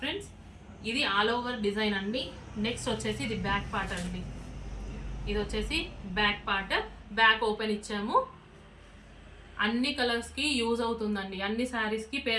ఫ్రెండ్స్. ఇది ఆల్ ఓవర్ డిజైన్ అండి. నెక్స్ట్ వచ్చేసి ఇది బ్యాక్ పార్ట్ అండి. ఇది వచ్చేసి బ్యాక్ పార్ట్. బ్యాక్ ఓపెన్ ఇచ్చాము. అన్ని కలర్స్కి యూజ్ అవుతుందండి. అన్ని శారీస్కి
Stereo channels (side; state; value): both; identical; correlation 1.00